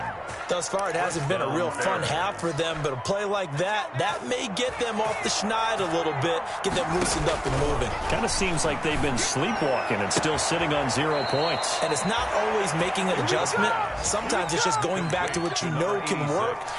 Thus far, it hasn't been a real fun half for them, but a play like that may get them off the schneid a little bit, get them loosened up and moving. Kind of seems like they've been sleepwalking and still sitting on 0 points. And it's not always making an adjustment. Sometimes it's just going back to what you know can work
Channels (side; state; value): both; identical; correlation 1.00